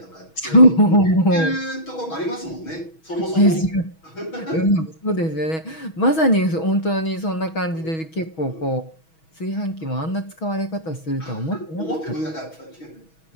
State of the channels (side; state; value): right; late; 6.2 ms